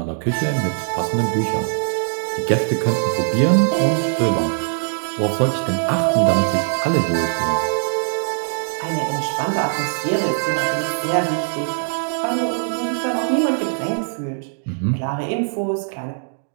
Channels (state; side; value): silent; left; digital silence